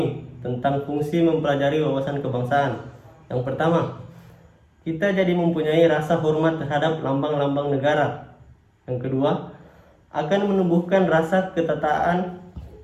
tentang fungsi mempelajari wawasan kebangsaan. Yang pertama, kita jadi mempunyai rasa hormat terhadap lambang-lambang negara. Yang kedua, akan menumbuhkan rasa ketaatan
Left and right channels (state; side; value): identical; both; correlation 1.00